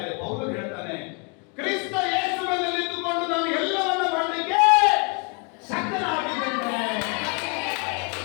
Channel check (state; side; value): quieter; right; 34.6 dB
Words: ಇದೆ, ಪೌಲನು ಹೇಳ್ತಾನೆ, ಕ್ರಿಸ್ತ ಯೇಸುವಿನಲ್ಲಿ ನಿಂತುಕೊಂಡು ನಾನು ಎಲ್ಲವನ್ನ ಮಾಡಲಿಕ್ಕೆ ಶಕ್ತನಾಗಿದ್ದೇನೆ.